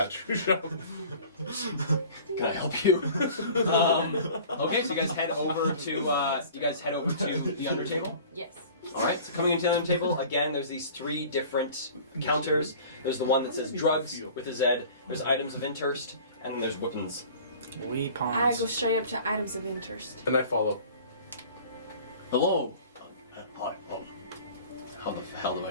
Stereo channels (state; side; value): inverted; both; correlation -0.44